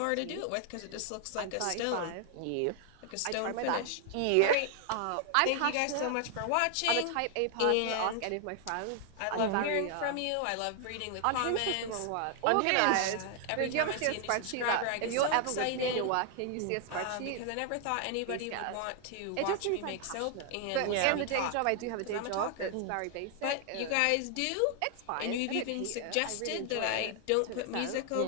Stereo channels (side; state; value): both; different; correlation 0.00